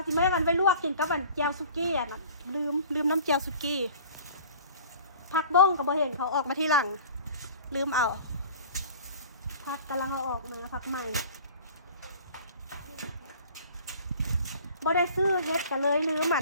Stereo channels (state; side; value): inverted; both; correlation -0.46